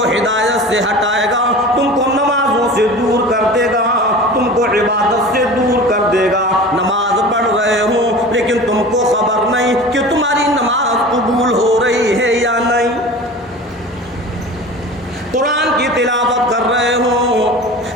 ہدایت سے ہٹائے گا، تم کو نمازوں سے دور کر دے گا، تم کو عبادت سے دور کر دے گا. نماز پڑھ رہے ہو لیکن تم کو خبر نہیں کہ تمہاری نماز قبول ہو رہی ہے یا نہیں. قرآن کی تلاوت کر رہے ہو،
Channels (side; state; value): both; normal; correlation 0.37